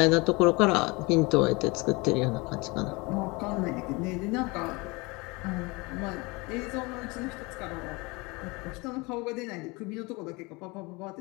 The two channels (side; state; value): right; quieter; 25.7 dB